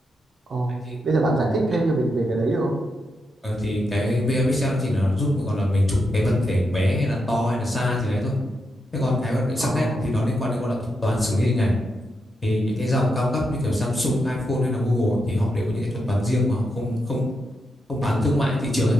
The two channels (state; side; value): normal; both; correlation 0.84